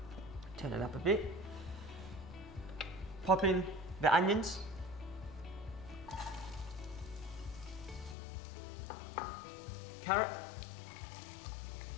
Turn it up a bit. Pop in the onions. Carrot.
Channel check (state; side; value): drops out; right; at 8.2 s